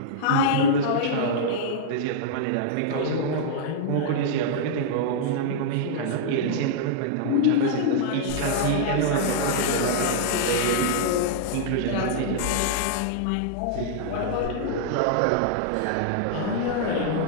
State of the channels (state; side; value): different; both; correlation -0.02